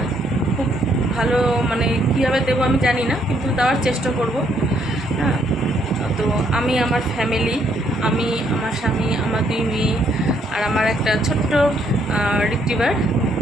খুব ভালো মানে কীভাবে দেবো আমি জানি না, কিন্তু দেওয়ার চেষ্টা করব। হ্যাঁ, তো আমি আমার ফ্যামিলি, আমি আমার স্বামী, আমার 2 মেয়ে আর আমার একটা ছোট্ট রিট্রিভার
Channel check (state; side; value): normal; both; correlation 0.70